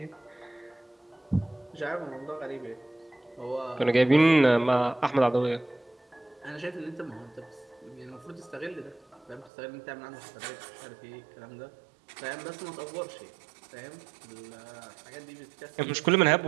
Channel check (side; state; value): left; drops out; at 9.5 s